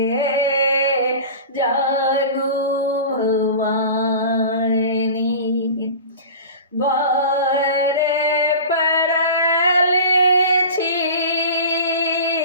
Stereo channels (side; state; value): both; inverted; correlation -0.35